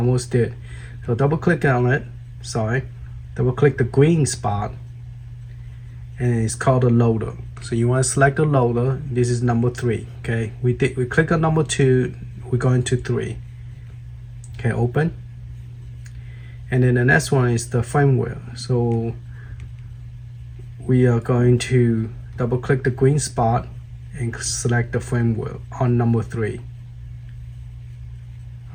did. So double click on it. Sorry, double click the green spot, and it's called a loader. So you want to select the loader. This is number 3. Okay, we click on number 2. We're going to 3. Okay, open. And then the next one is the firmware. So we are going to double click the green spot and select the firmware on number 3.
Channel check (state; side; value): identical; both; correlation 1.00